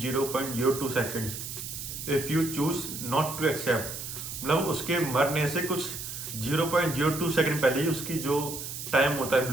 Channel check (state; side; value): noise; right; hiss, 8 dB below the sound